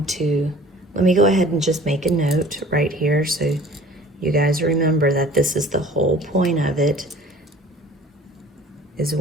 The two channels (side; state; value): both; normal; correlation 0.47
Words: to, let me go ahead and just make a note right here so you guys remember that this is the whole point of it, is